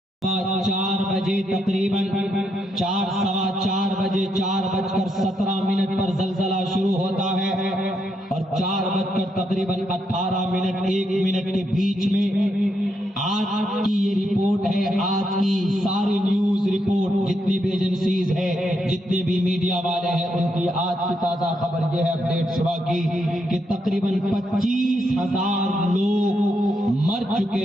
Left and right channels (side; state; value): both; normal; correlation 0.79